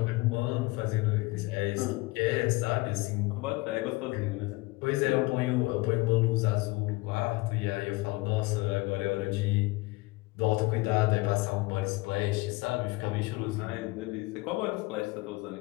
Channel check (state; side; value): quieter; right; 22.6 dB